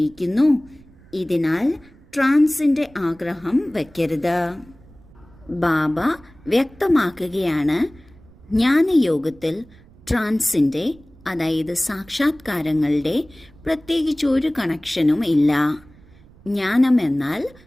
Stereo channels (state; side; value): noise; right; rumble, 25 dB below the sound